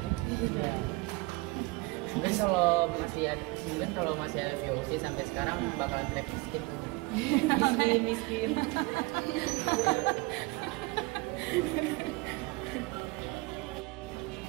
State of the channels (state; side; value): quieter; left; 24.2 dB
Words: Ya. Mungkin kalau masih ada VOC sampai sekarang bakalan track miskin. Miskin.